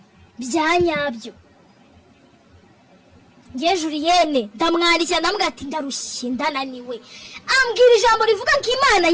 Byanyabyo. Nge Julienne ndamwandikira ndambwira ati ndarushye ndananiwe. Ambwira ijambo rivuga ko Imana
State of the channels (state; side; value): identical; both; correlation 1.00